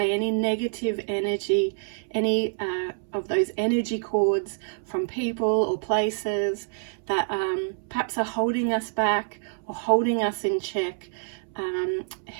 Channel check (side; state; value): left; silent; 60 dB below the other